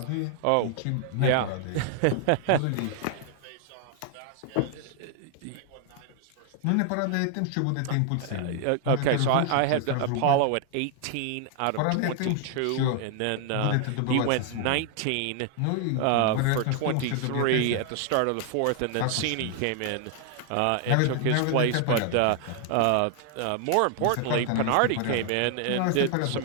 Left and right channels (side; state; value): both; different; correlation 0.00